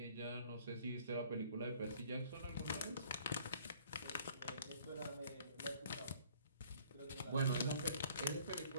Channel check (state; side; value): inverted; both; correlation -0.57